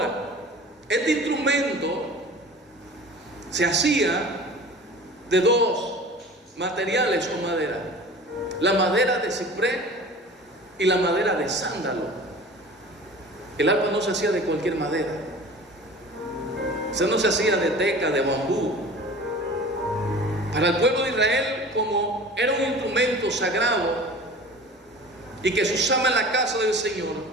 este instrumento se hacía de 2 materiales o madera. la madera de ciprés y la madera de sándalo. El arpa no se hacía de cualquier madera. O sea, no se hacía de teca, de bambú. Para el pueblo de Israel, como era un instrumento sagrado y que se usaba en la casa del Señor,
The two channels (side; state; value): both; normal; correlation 0.41